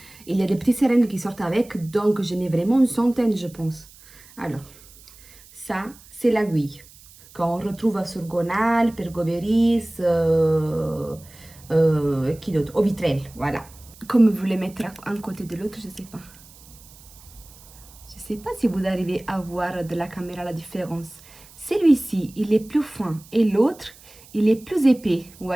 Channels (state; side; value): noise; right; hiss, 23 dB below the sound